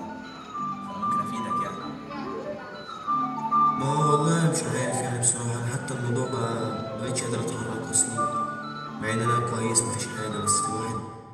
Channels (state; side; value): identical; both; correlation 1.00